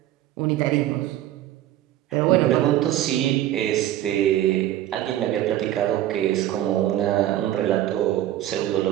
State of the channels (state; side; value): quieter; left; 13.1 dB